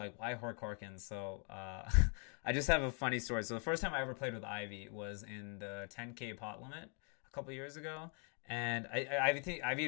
why Hoyt Corkins? So I just have a funny story. So the first time I ever played with Ivy was in the 10K pot limit a couple years ago. And I think Ivy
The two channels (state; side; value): quieter; right; 39.3 dB